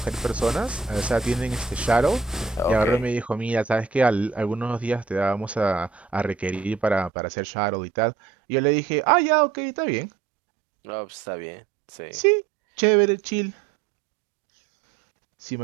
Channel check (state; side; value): drops out; left; at 7.1 s